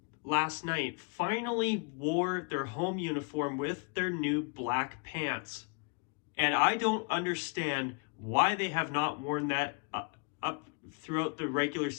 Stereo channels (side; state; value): right; quieter; 35.1 dB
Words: last night finally wore their home uniform with their new black pants. And I don't understand why they have not worn that up throughout the regular